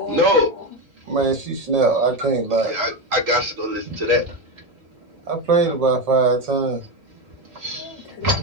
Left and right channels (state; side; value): late; left; 1.8 ms